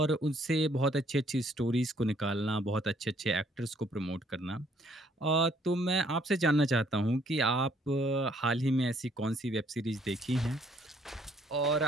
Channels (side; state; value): both; normal; correlation 0.65